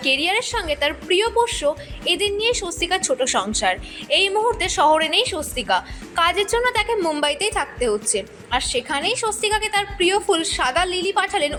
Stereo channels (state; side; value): identical; both; correlation 1.00